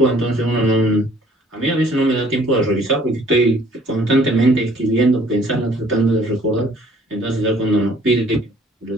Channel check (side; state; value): both; normal; correlation 0.58